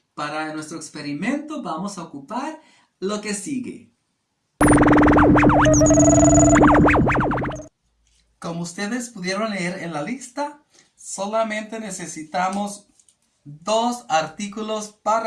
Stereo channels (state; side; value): identical; both; correlation 1.00